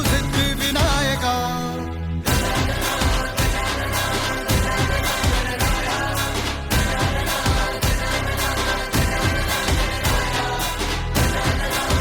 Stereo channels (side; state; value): both; identical; correlation 1.00